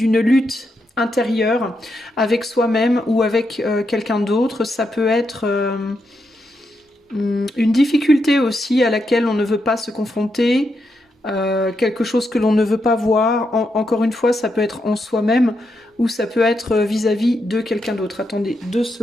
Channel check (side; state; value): both; normal; correlation 0.83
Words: lutte intérieure avec soi-même ou avec quelqu'un d'autre. Ça peut être une difficulté aussi à laquelle on ne veut pas se confronter. Quelque chose que l'on ne veut pas voir. Encore une fois, ça peut être en soi-même ou ça peut être vis-à-vis de quelqu'un d'autre. Attendez 2